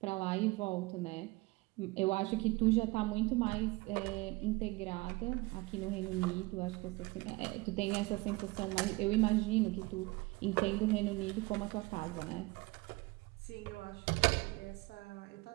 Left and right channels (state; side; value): quieter; left; 23.3 dB